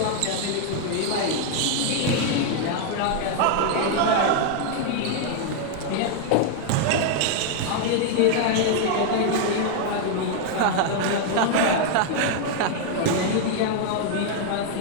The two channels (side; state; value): both; different; correlation 0.00